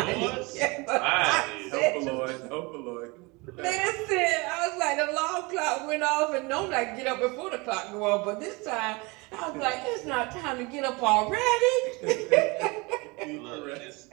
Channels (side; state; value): left; quieter; 26.3 dB